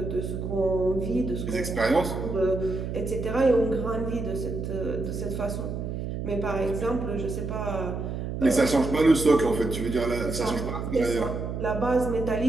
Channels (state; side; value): noise; right; hum, 5 dB below the sound